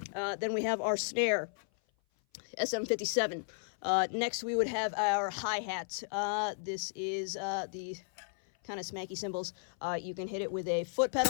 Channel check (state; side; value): silent; right; 55 dB below the other